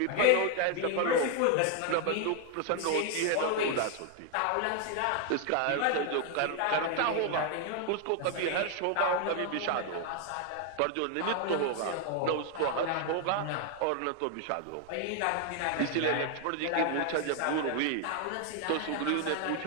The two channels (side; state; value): both; different; correlation 0.00